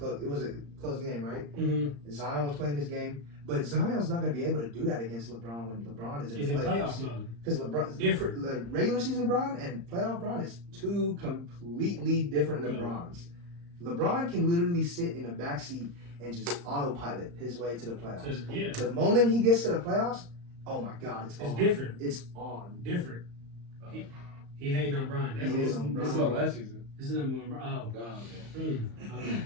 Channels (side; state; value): left; late; 35 ms